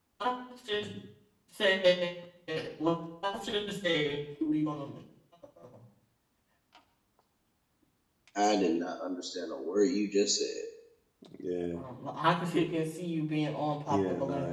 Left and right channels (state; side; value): identical; both; correlation 1.00